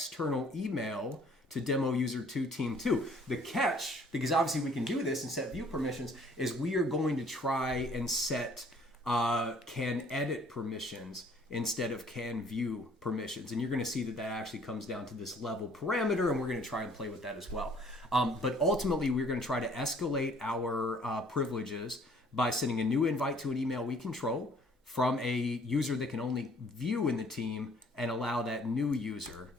email to demo user 2 team 2. The catch, because obviously we can do this and set view permissions, is we are going to try and set can edit permissions instead of can view permissions. And you're going to see that that actually comes down to this level parameter, and we're going to try and play with that as well. But ultimately, we're going to try to escalate our privileges by sending a new invite to an email we control from a user that can only view in the team and allow that new user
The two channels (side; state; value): both; normal; correlation 0.58